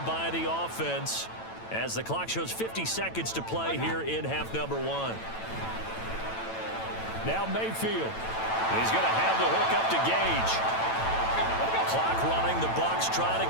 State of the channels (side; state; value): right; late; 9.0 ms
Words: by the offense as the clock shows 50 seconds to play here in half number 1. Now Mayfield. He's going to have the hook up to Gage. Clock running. The Bucs try to